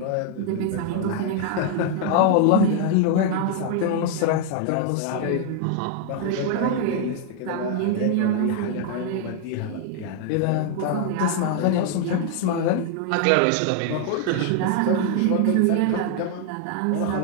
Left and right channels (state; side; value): different; both; correlation 0.00